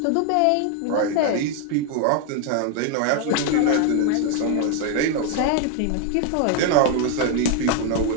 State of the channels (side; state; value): both; different; correlation 0.01